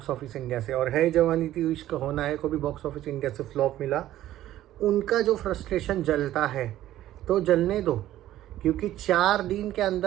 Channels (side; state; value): left; quieter; 13.6 dB